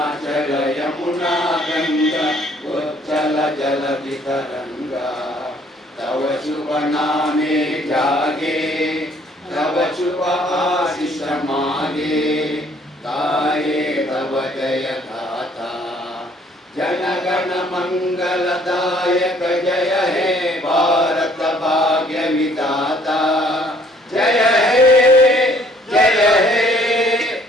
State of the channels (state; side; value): normal; both; correlation 0.61